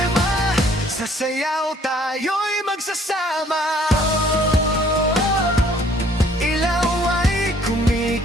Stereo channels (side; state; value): both; normal; correlation 0.60